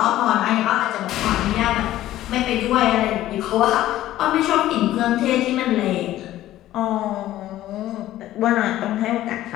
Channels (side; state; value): right; quieter; 14.1 dB